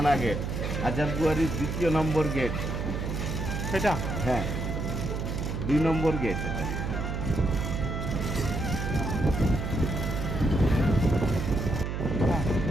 গেট, হাজারদুয়ারির দ্বিতীয় নম্বর গেট। সেটা হ্যাঁ, 2 নম্বর গেট এটা। হ্যাঁ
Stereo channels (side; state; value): right; noise; hum, 3 dB below the sound